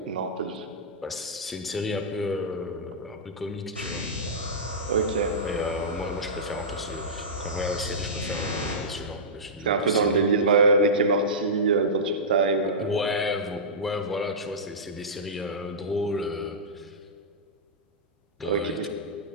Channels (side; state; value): both; normal; correlation -0.14